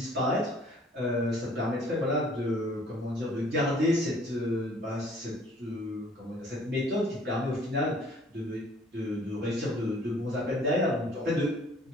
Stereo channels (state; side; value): normal; both; correlation 0.56